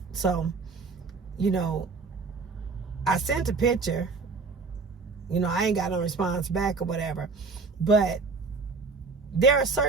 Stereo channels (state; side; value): quieter; left; 4.4 dB